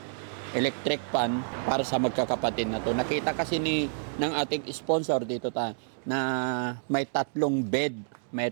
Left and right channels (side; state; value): left; silent; digital silence